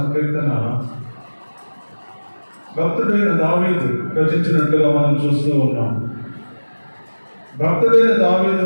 భక్తుడైన దావీదు రచించినట్టుగా మనం చూస్తూ ఉన్నాం. భక్తుడైన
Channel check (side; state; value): both; inverted; correlation -1.00